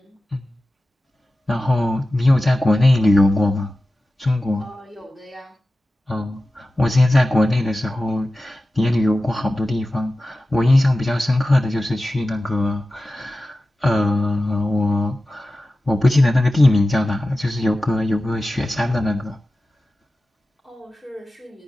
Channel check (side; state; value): both; normal; correlation 0.95